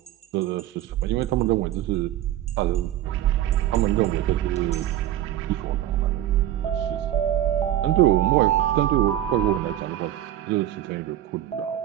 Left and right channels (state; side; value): quieter; left; 12.6 dB